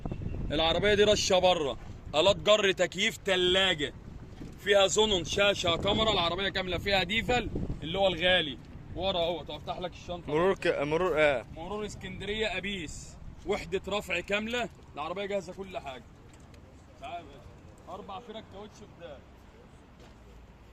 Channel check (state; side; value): identical; both; correlation 1.00